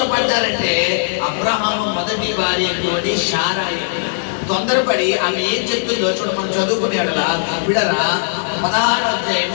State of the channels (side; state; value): right; silent; 68 dB below the other